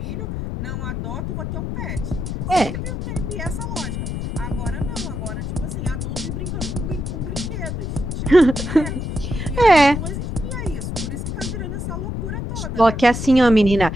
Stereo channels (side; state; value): left; noise; rumble, 4 dB below the sound